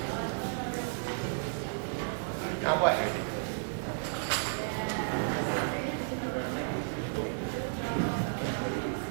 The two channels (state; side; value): silent; left; digital silence